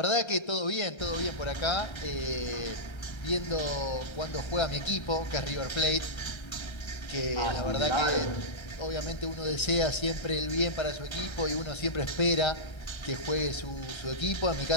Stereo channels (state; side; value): late; right; 1.3 ms